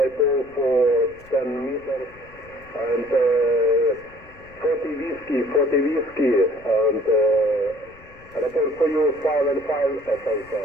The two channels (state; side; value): noise; left; rumble, 24 dB below the sound